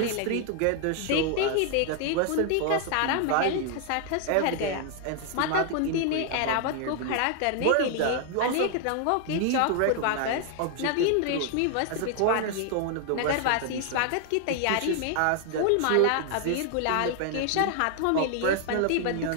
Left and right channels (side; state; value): both; different; correlation 0.00